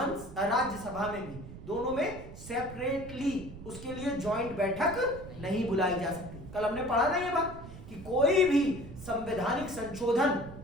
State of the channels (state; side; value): noise; right; rumble, 14 dB below the sound